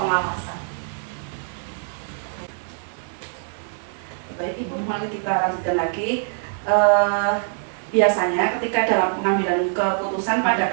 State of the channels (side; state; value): left; silent; 63 dB below the other